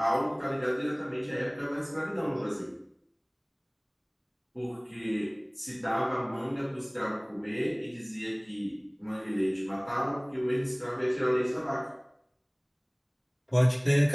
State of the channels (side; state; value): both; identical; correlation 1.00